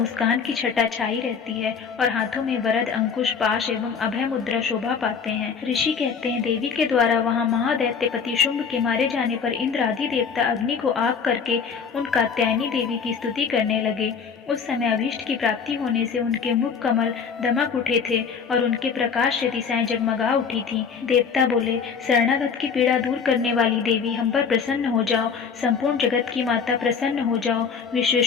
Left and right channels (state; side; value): quieter; right; 6.2 dB